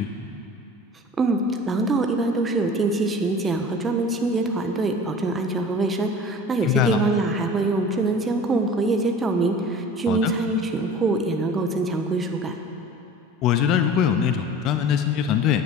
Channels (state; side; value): normal; both; correlation 0.41